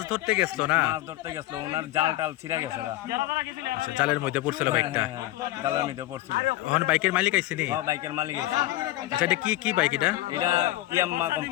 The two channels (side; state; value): right; quieter; 16.5 dB